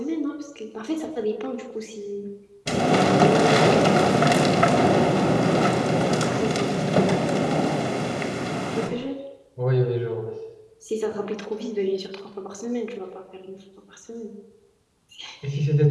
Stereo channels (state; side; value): identical; both; correlation 1.00